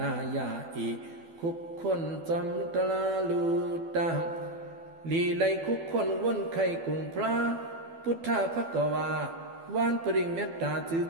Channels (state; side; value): late; left; 12 ms